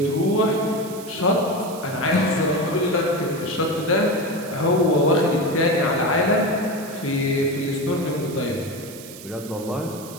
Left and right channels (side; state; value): right; noise; hiss, 16 dB below the sound